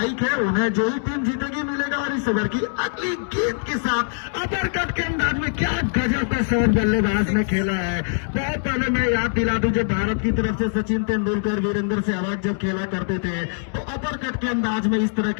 है उन्हें जो ही टीम जीतेगी मिलेगा। और इस ओवर की अगली गेंद के साथ अपर कट के अंदाज में क्या गजब का शॉट बल्लेबाज ने खेला है। बहुत पहले मैं याद दिला दूं जब भारत की तरफ से सचिन तेंदुलकर वीरेंद्र सहवाग जब खेला करते थे तो अपर कट के अंदाज में इस तरह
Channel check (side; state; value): right; silent; digital silence